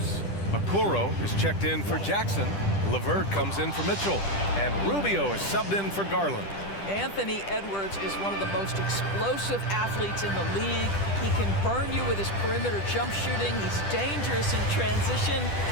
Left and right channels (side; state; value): right; late; 10 ms